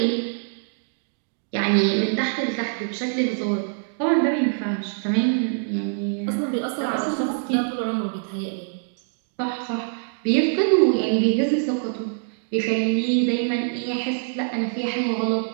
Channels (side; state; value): left; silent; digital silence